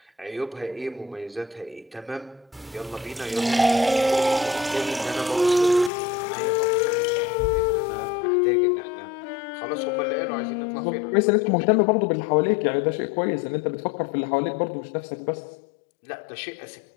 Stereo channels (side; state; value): right; drops out; at 5.9 s